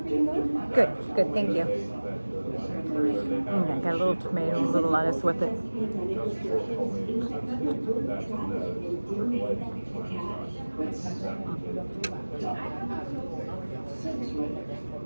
going? Good, thank you. I got a little tomato, a little lettuce with it.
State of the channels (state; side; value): inverted; both; correlation -1.00